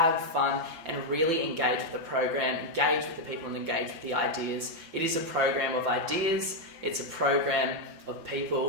fun, and really engage with the program, engage with the people and engage with the ideas. It is a program of ideas, it's a program of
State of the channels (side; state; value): left; late; 5.9 ms